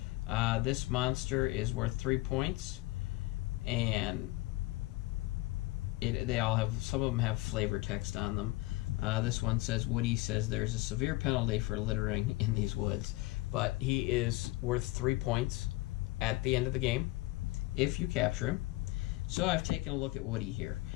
This monster is worth 3 points, and they all have, some of them have flavor text on them. This one says, Woody says there's a severe penalty for littering in these woods, but he is worth 3 points at the end of the game if you capture him. So I've taken a look at Woody here,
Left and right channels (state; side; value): quieter; right; 20.2 dB